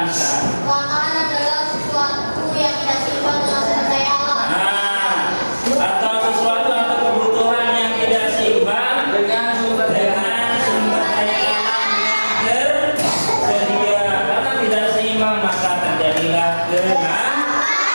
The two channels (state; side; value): inverted; both; correlation -1.00